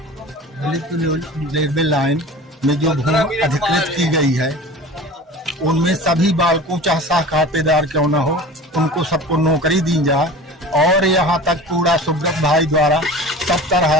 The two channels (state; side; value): normal; both; correlation 0.38